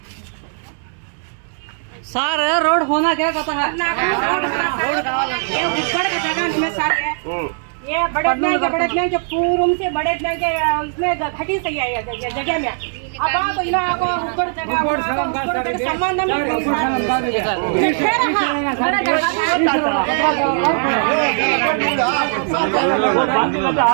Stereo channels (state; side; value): silent; left; digital silence